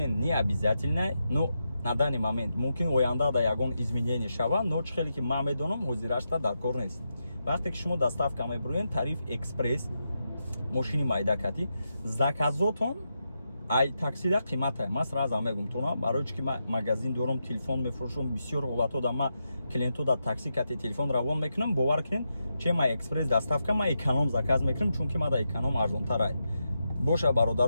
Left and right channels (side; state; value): both; inverted; correlation -0.86